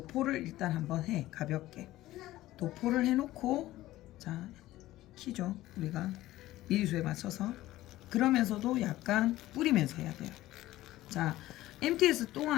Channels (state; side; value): quieter; right; 16.0 dB